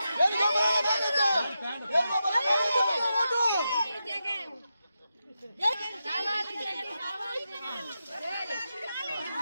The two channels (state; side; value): inverted; both; correlation -0.88